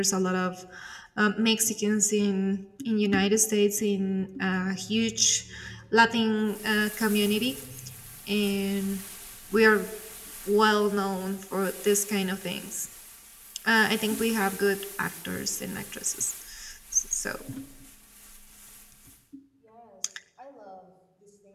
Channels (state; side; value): identical; both; correlation 1.00